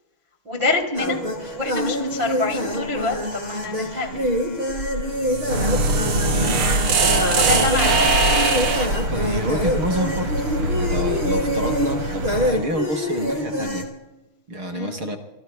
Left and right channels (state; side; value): late; left; 6.7 ms